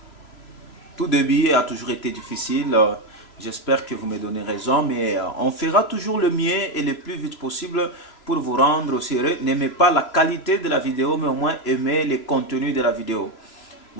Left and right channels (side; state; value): right; late; 3.0 ms